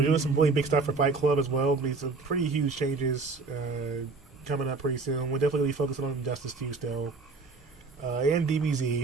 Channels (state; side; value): quieter; left; 4.0 dB